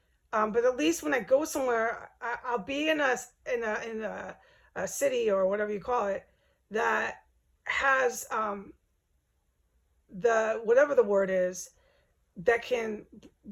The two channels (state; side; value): identical; both; correlation 1.00